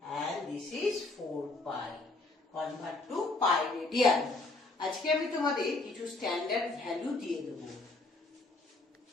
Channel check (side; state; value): right; quieter; 3.2 dB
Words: and this is 4 pi. Convert to pi radian. আজকে আমি তোমাদের কিছু standard value দিয়ে দেব।